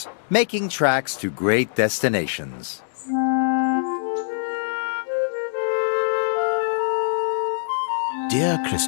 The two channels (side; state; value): right; silent; digital silence